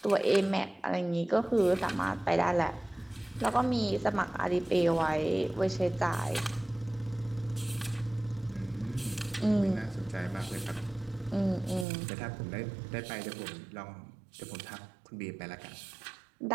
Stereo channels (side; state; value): left; drops out; at 11.9 s